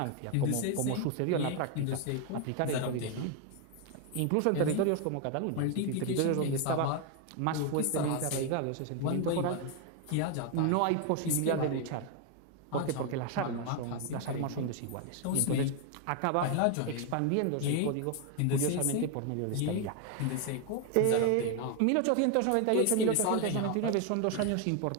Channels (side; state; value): both; different; correlation 0.01